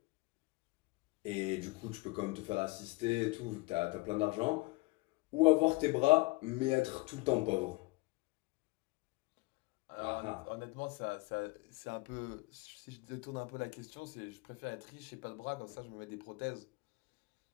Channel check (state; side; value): quieter; right; 23.1 dB